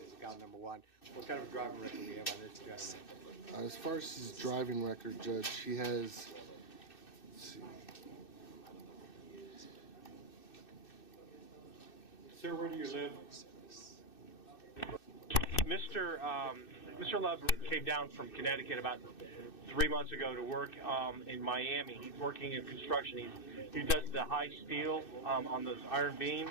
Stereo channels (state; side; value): late; right; 2.6 ms